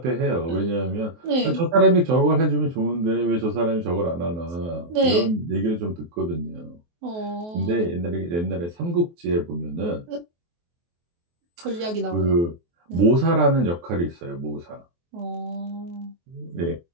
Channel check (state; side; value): late; left; 23 ms